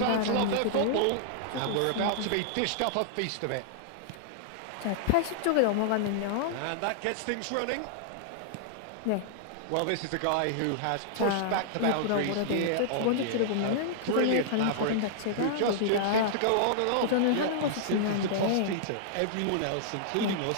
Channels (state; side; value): different; both; correlation -0.01